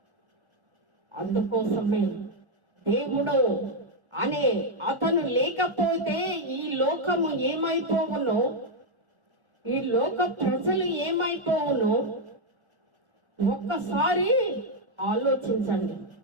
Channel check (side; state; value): left; late; 1.4 ms